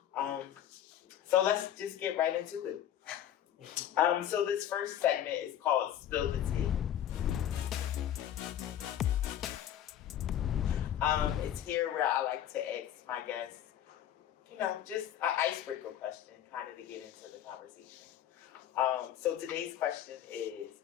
So let's just get right into it. So this first segment is called Spill the Tea. It's here where I like to ask my guests, just an icebreaker question, kind of to get into the conversation. So today's question is,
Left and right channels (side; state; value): right; quieter; 10.8 dB